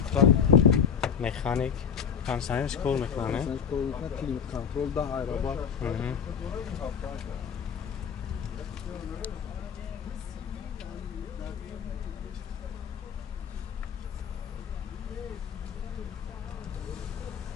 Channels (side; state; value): right; quieter; 7.4 dB